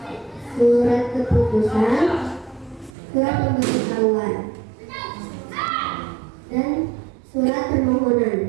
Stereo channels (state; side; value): drops out; left; at 2.9 s